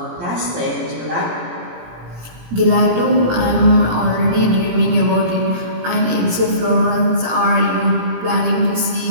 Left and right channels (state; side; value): late; left; 17 ms